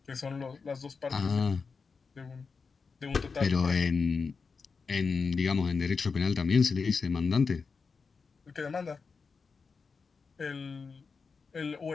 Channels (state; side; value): quieter; right; 5.0 dB